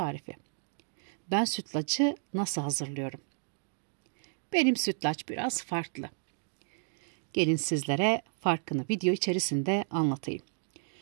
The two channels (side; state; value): left; silent; digital silence